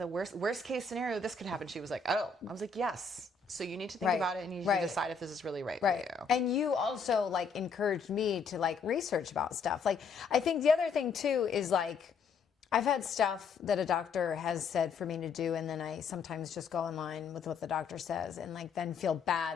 worst case scenario, this could happen. She was like, oh. I was like, yes. So you need to think Right. about it and you need Right. to decide if this is really right for Right. you. And you also like encouraged me to like research about stuff. Like I think the other thing too is like I've had stuff that a doctor has said for me to do, and then I sometimes just go online with what the doctor says and like then feel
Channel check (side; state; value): right; quieter; 5.1 dB